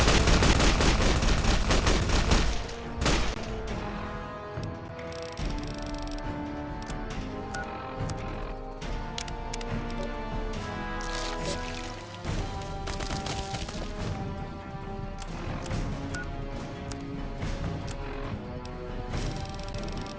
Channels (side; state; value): both; identical; correlation 1.00